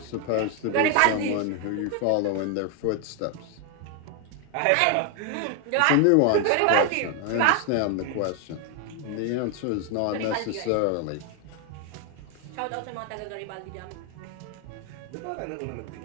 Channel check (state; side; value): different; both; correlation 0.01